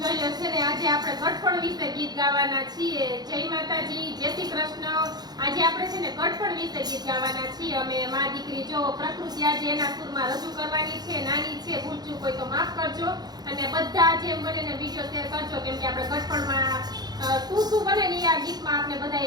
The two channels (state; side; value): late; left; 0.19 ms